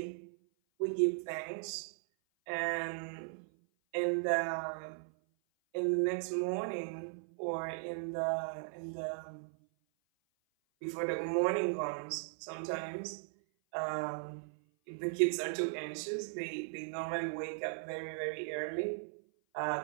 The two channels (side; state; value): left; silent; 53 dB below the other